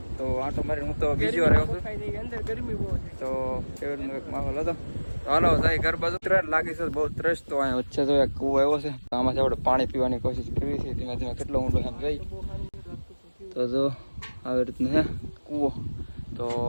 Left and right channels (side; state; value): both; inverted; correlation -1.00